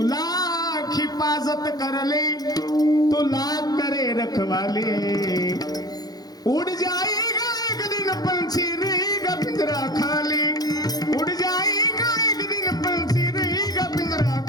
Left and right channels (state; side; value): late; right; 0.19 ms